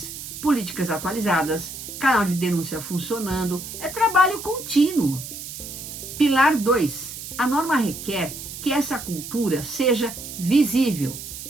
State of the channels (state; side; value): noise; right; hiss, 10 dB below the sound